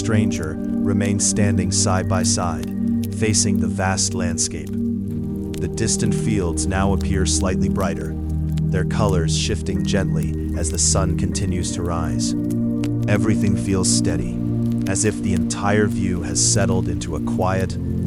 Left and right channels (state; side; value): identical; both; correlation 1.00